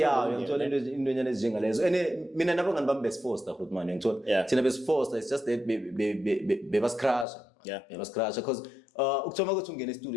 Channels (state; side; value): drops out; right; at 7.2 s